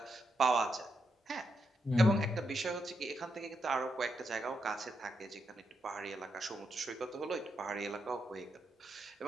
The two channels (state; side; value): normal; both; correlation 0.82